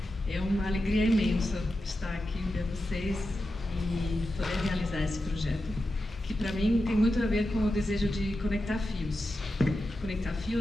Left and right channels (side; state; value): both; normal; correlation 0.90